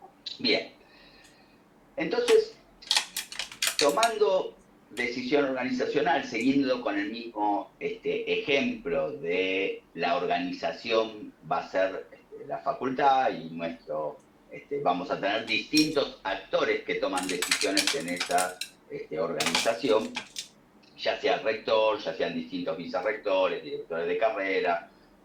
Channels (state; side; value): identical; both; correlation 1.00